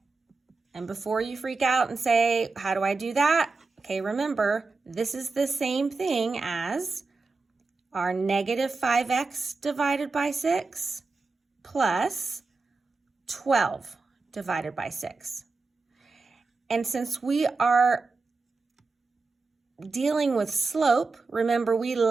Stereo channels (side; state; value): left; quieter; 4.0 dB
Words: And before you freak out and say, how do I do that? Okay, remember, this is the same thing as our negative 5x divided by 6 plus 12 divided by 6. And since we are dealing with slope, remember we